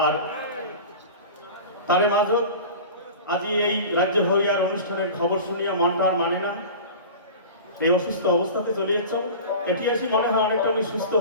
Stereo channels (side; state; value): both; inverted; correlation -0.35